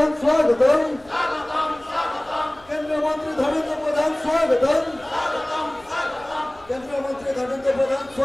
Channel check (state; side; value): noise; left; rumble, 27 dB below the sound